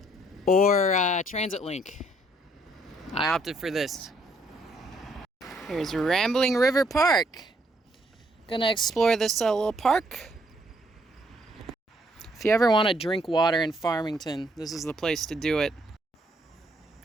or Transit Link. I opted for this. Here's Rambling River Park. Gonna explore this little park. If you ever want to drink water in Farmington, this is the place to do it.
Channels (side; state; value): both; normal; correlation 0.69